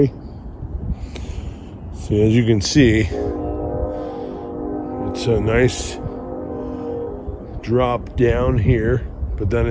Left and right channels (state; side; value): identical; both; correlation 1.00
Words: So as you can see, it's a nice drop down here, but then